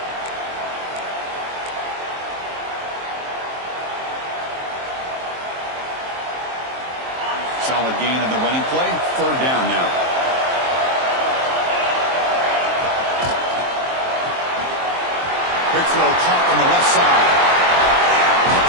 Solid gain on the running play. Third down now. Quick throw caught on the left side.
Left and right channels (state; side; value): late; left; 23 ms